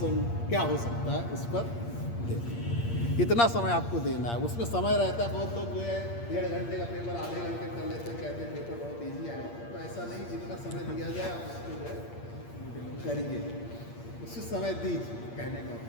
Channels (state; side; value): late; right; 8.6 ms